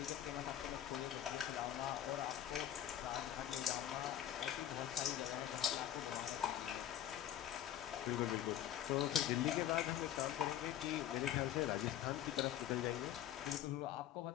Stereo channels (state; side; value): quieter; right; 11.3 dB